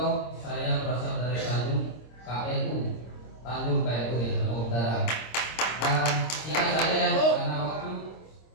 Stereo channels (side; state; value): right; late; 26 ms